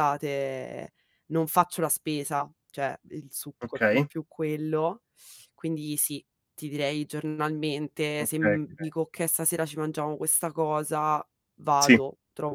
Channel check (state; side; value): identical; both; correlation 1.00